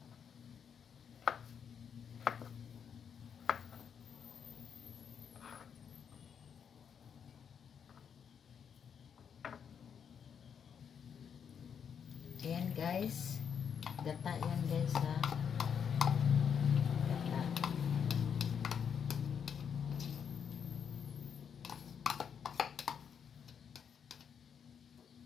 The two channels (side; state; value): right; quieter; 7.4 dB